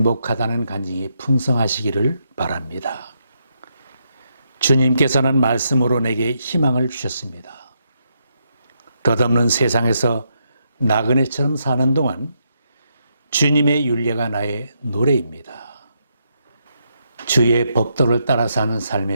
간증이 풍성하시기를 바랍니다. 주님께서는 말씀으로 내게 희망을 주셨습니다. 덧없는 세상에서 나그네처럼 사는 동안 주님의 윤례가 나의 노래입니다. 주의 법도를 따라 사는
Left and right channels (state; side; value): inverted; both; correlation -0.80